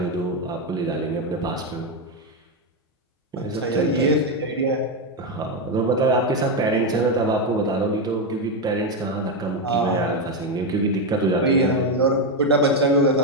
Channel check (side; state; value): both; normal; correlation 0.07